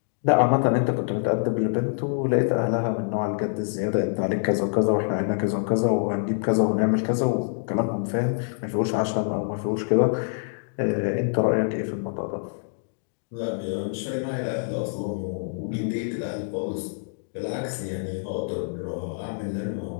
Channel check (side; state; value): right; silent; digital silence